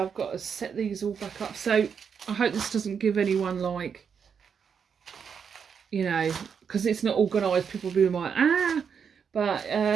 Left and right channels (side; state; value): left; quieter; 6.8 dB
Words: I've got to set these all back up. So I hope this doesn't give anyone, like, you know, because it's not organised, people will be like, ah. But